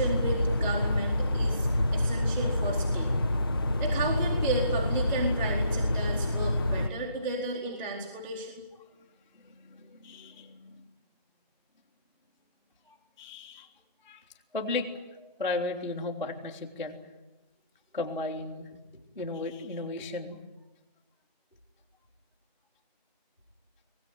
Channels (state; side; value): inverted; both; correlation -0.65